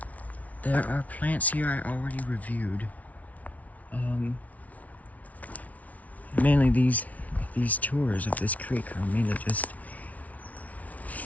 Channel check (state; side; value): late; right; 0.070 ms